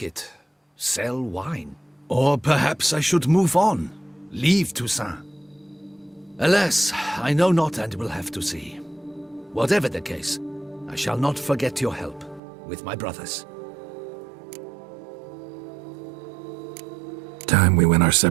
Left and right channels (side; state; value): left; drops out; at 12.4 s